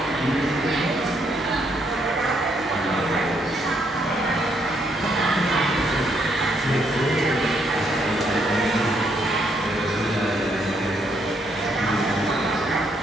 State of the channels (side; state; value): both; normal; correlation 0.73